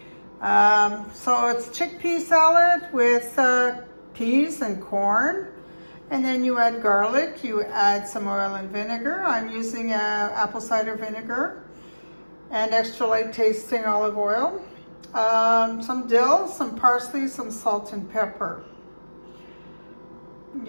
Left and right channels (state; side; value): inverted; both; correlation -1.00